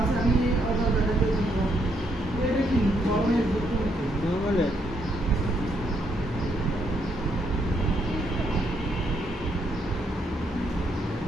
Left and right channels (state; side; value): normal; both; correlation 0.74